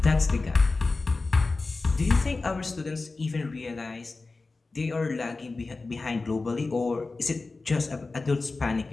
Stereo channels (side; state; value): right; quieter; 3.7 dB